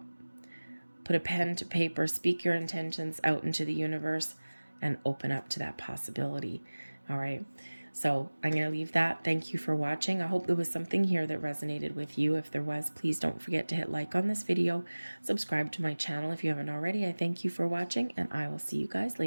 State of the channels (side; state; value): both; inverted; correlation -1.00